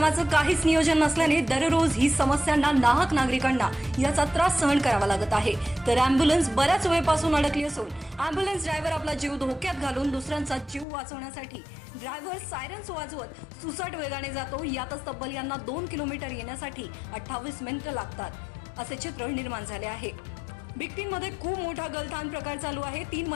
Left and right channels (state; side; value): drops out; right; at 10.9 s